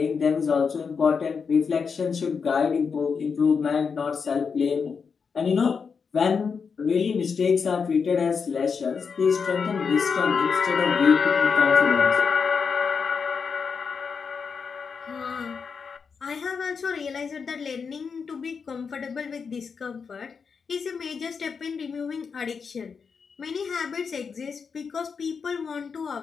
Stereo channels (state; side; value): quieter; right; 5.7 dB